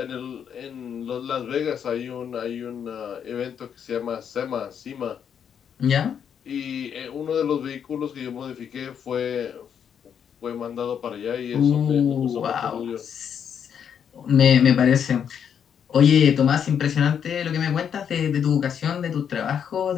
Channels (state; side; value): quieter; right; 8.1 dB